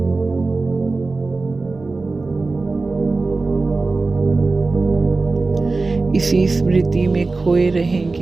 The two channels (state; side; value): quieter; left; 3.6 dB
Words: इसी स्मृति में खोए